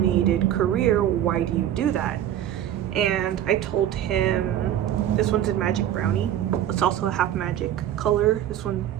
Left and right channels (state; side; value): quieter; left; 11.2 dB